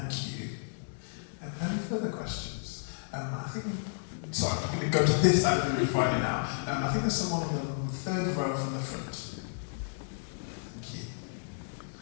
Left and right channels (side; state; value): right; silent; digital silence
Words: you. Any further questions? I think, sorry, I'm going to go to this side of the room right now. I think there's someone on the third row from the front.